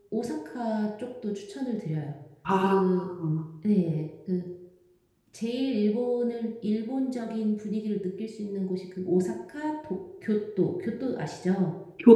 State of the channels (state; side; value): identical; both; correlation 1.00